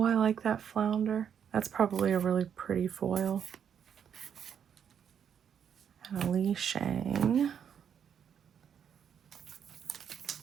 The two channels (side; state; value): left; quieter; 8.1 dB